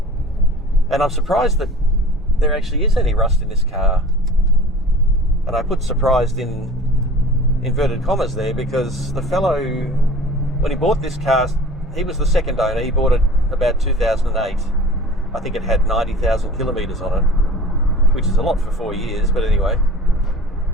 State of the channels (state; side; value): normal; both; correlation 0.42